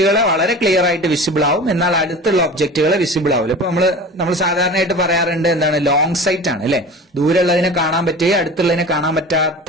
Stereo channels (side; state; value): both; normal; correlation 0.37